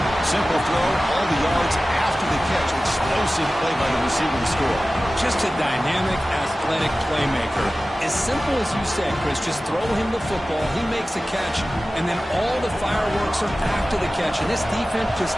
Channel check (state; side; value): normal; both; correlation 0.96